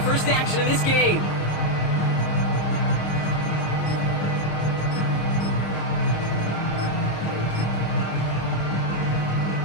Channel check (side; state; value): right; late; 26 ms